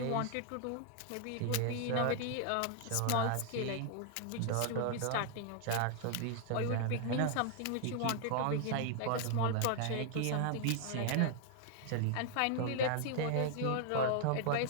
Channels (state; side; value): different; both; correlation 0.00